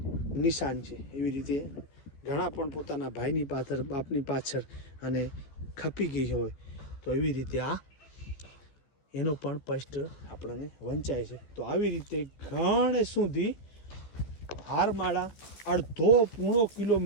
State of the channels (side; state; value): right; late; 14 ms